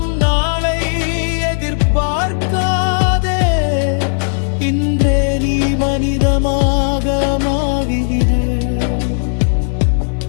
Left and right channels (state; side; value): silent; right; digital silence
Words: நாளை எதிர்பார்க்காதே. இன்றே நீ மனிதமாக மாறிடு.